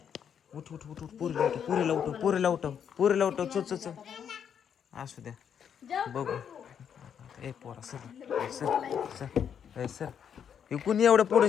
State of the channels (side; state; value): right; quieter; 8.1 dB